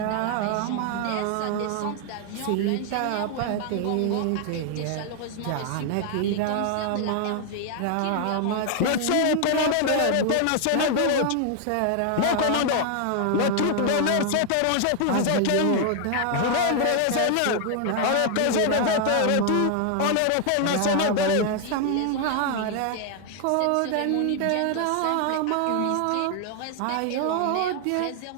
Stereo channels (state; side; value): different; both; correlation 0.00